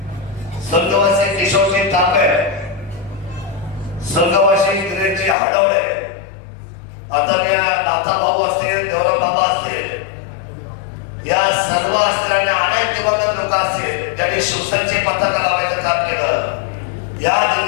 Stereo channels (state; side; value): drops out; right; at 5.4 s